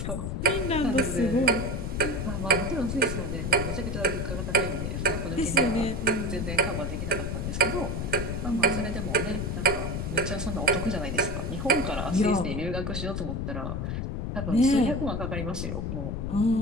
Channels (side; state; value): left; noise; rumble, 3 dB below the sound